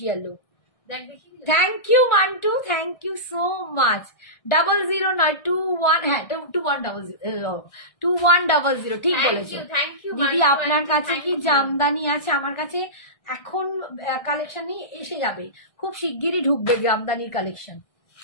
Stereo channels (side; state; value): right; late; 1.6 ms